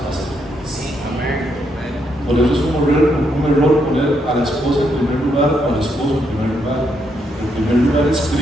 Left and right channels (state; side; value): normal; both; correlation 0.77